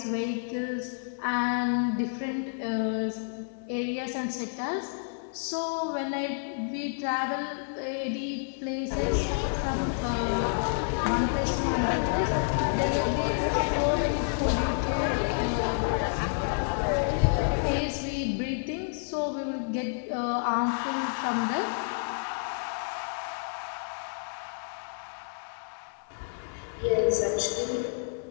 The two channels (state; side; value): silent; right; digital silence